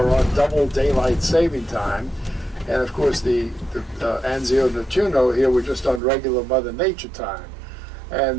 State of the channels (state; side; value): drops out; left; at 6.0 s